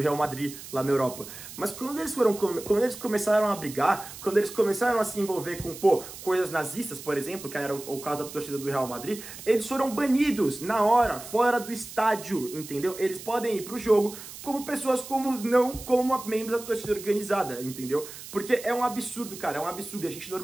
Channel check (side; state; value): right; noise; hiss, 13 dB below the sound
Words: Madrid, lá na Europa. Mas quando eles começaram a brigar, quando eles começaram a se envolver com, coisas nazistas, por exemplo, que era o caso da torcida do Real Madrid, eles foram banidos na hora, fora do estádio, entendeu? Eles podem ir pro jogo como pessoas comuns, não como membros da torcida organizada, entendeu? Porque é um absurdo, cara, é um absurdo. A gente